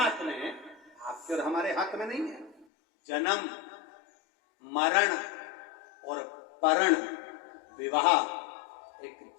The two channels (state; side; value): drops out; right; at 2.7 s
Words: में है, आपके और हमारे हाथ में नहीं है। जन्म, मरण और परण, विवाह, एक